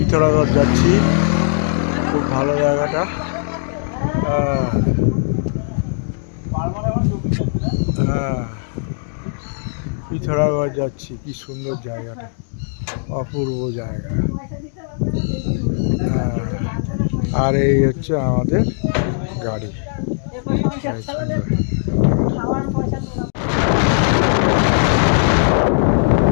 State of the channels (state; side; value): silent; right; digital silence